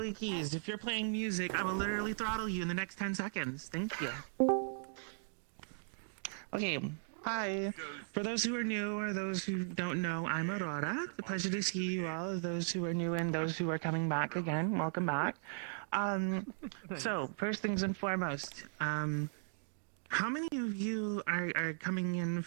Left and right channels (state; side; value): silent; left; digital silence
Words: keys. If you're playing music, I will literally throttle you in the next 10 seconds. Thank you. Okay, hi. For those who are new or those who don't know, I'm Aurora. It's a pleasure to see you all. Those who are new and those who are coming back again, welcome back. So, first things and foremost, how many of you are coming in